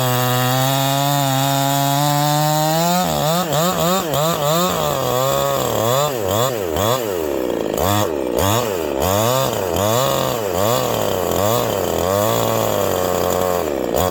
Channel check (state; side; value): identical; both; correlation 1.00